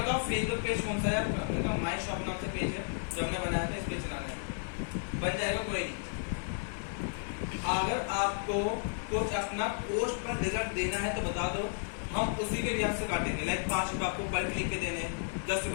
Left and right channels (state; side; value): silent; right; 56 dB below the other